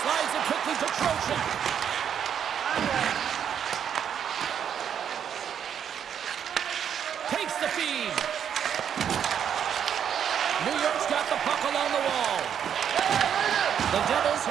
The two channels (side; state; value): left; quieter; 8.5 dB